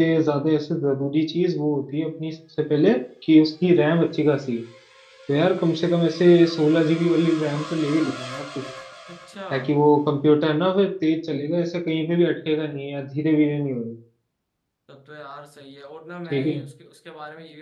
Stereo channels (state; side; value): identical; both; correlation 1.00